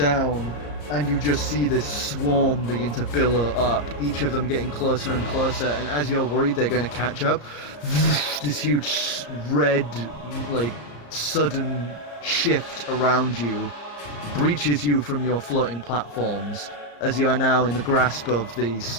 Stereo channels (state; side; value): late; right; 34 ms